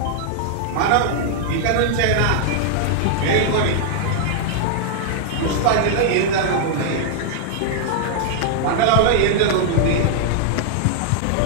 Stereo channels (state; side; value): different; both; correlation -0.01